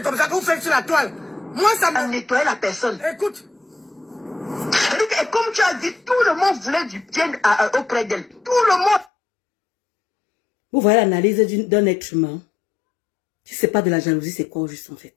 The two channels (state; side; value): drops out; right; at 9.1 s